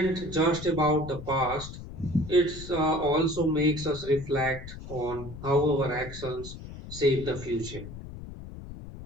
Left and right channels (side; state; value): left; noise; rumble, 12 dB below the sound